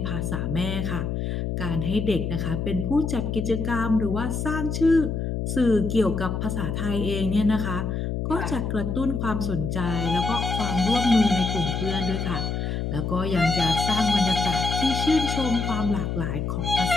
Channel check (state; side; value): noise; left; hum, 2 dB below the sound